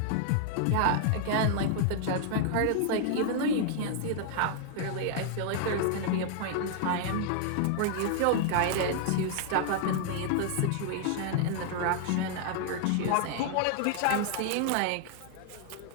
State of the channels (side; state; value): both; different; correlation 0.00